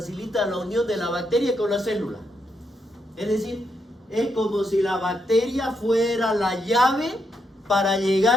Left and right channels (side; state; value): both; normal; correlation 0.80